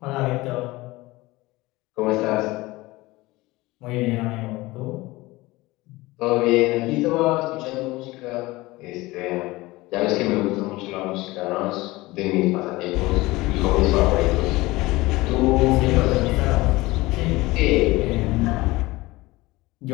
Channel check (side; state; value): right; quieter; 20.4 dB